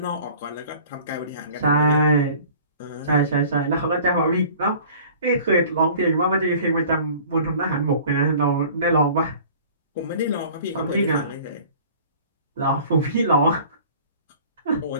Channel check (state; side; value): inverted; both; correlation -0.47